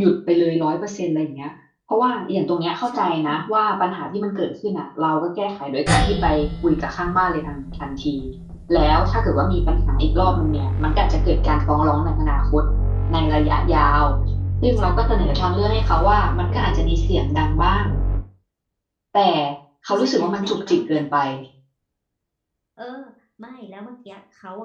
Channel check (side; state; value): both; identical; correlation 1.00